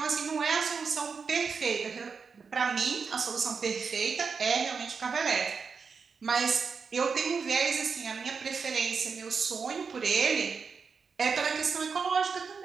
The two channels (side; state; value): left; quieter; 5.5 dB